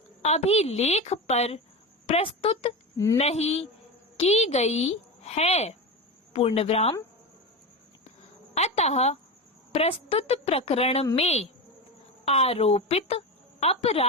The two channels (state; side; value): normal; both; correlation 0.21